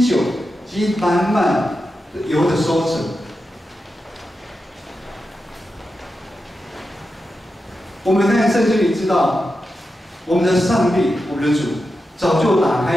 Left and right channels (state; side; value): normal; both; correlation 0.90